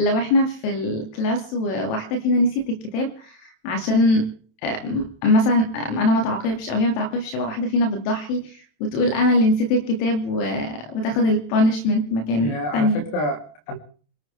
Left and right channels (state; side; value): late; right; 27 ms